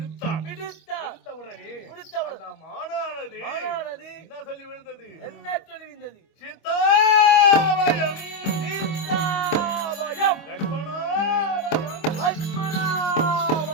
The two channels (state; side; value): late; right; 25 ms